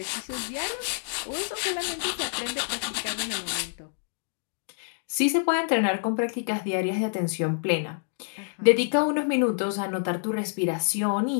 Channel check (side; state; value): right; silent; digital silence